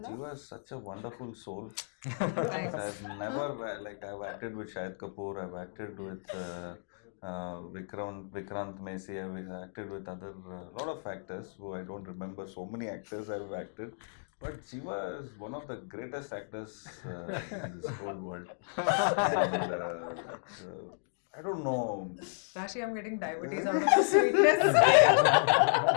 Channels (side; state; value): right; silent; digital silence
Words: Jiva is such a wonderful soul. Thanks. I've never I've acted with Shahid Kapoor, I've acted with Vikrant Messi, I've acted with other lot of actors who I don't remember. So many actors I've acted, but Jiva is one of the greatest actors in this whole world. And, I don't know. Rashi, I'm getting diabetes out of the sweetness.